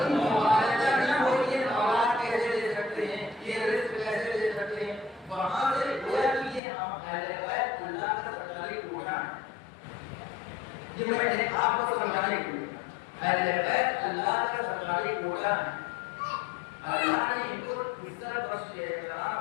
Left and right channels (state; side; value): drops out; right; at 6.6 s